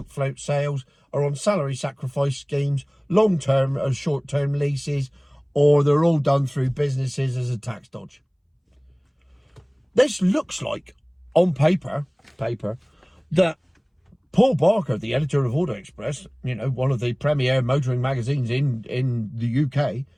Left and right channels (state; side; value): identical; both; correlation 1.00